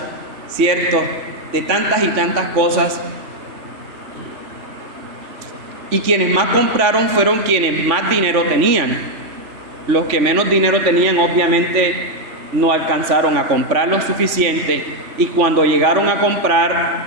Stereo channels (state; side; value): late; left; 3.4 ms